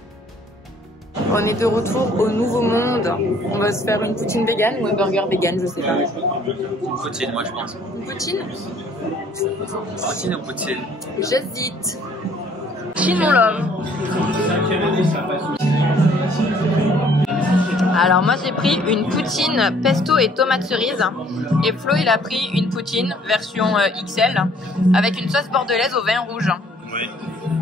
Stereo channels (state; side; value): normal; both; correlation 0.59